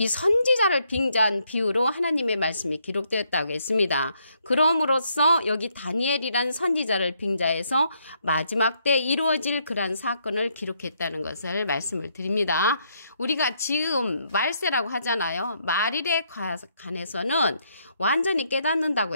선지자를 빙자한 비유로 하나님의 말씀이 기록되었다고 했습니다. 그럼으로써 여기 다니엘이란 선지자를 빙자해서 마지막 때 이루어질 그러한 사건을 기록했다는 것을 말씀을 드립니다. 우리가 지금 말세라고 하잖아요. 말일에 관해서는 완전히 깨닫는다고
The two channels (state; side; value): inverted; both; correlation -0.74